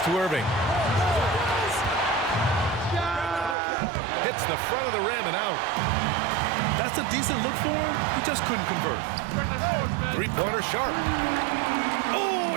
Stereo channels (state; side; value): drops out; left; at 3.6 s